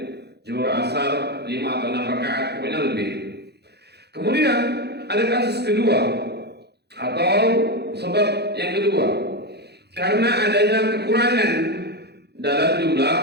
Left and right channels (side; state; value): left; late; 0.48 ms